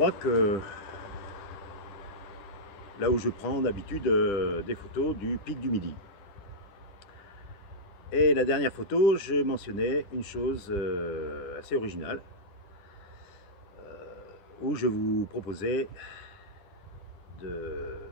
que là où je prends d'habitude des photos du pic du Midi. Et la dernière photo, je mentionnais une chose assez originale, où je vous proposais de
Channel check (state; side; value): late; right; 10 ms